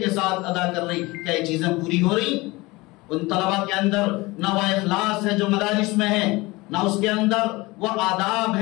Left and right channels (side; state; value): right; quieter; 22.1 dB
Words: ساتھ ادا کر رہی، کیا یہ چیزیں پوری ہو رہی؟ ان طلبہ کے اندر نہ وہ اخلاص ہے جو مدارس میں ہے، نہ اس کے اندر وہ آداب